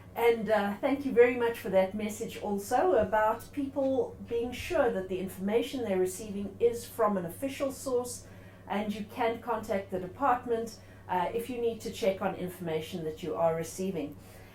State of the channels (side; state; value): both; identical; correlation 1.00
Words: And thank you very much for that message also about people being sure that the information they're receiving is from an official source, and you can contact the department if you need to check on information that you are receiving.